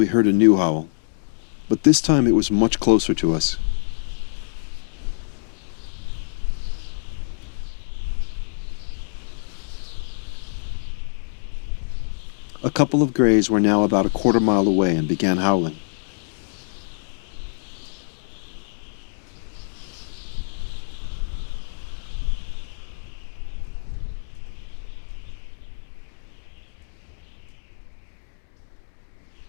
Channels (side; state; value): right; silent; digital silence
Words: heard a new howl, but this time it was much closer to us. A couple of grays were now about a quarter mile away and began howling.